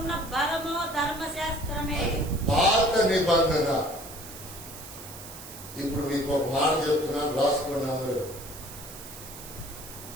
బలము ధర్మశాస్త్రమే. పాత నిబంధన. ఇప్పుడు మీకు ఒక మాట చెప్తున్నాను, రాసుకున్నాము.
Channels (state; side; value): noise; right; hiss, 14 dB below the sound